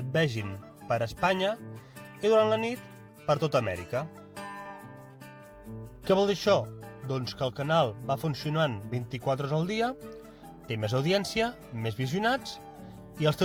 vegin per Espanya i durant la nit per tota Amèrica. Què vol dir això? Doncs que el canal va funcionant 24 hores al dia, té més audiència, més visionats i els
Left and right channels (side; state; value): both; identical; correlation 1.00